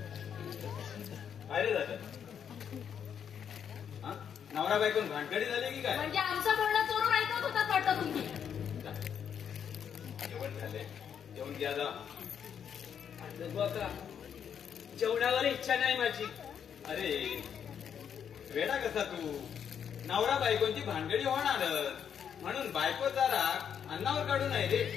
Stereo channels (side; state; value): right; quieter; 8.1 dB